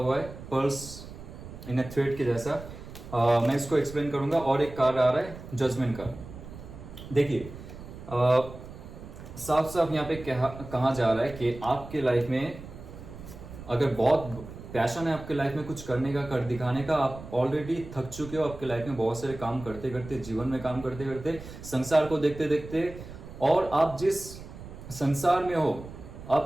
है, पर्ल्स इन ए थ्रेड के जैसा। मैं इसको एक्सप्लेन करूंगा। और एक कार्ड आ रहा है जजमेंट का। देखिए साफ साफ यहाँ पे कहा जा रहा है कि आपके लाइफ में अगर बहुत पैशन है आपके लाइफ में कुछ करने का, कर दिखाने का, आप ऑलरेडी थक चुके हो आपके लाइफ में बहुत सारे काम करते करते, जीवन में काम करते करते, संसार को देखते देखते, और आप जिस संसार में हो,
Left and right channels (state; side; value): noise; right; rumble, 14 dB below the sound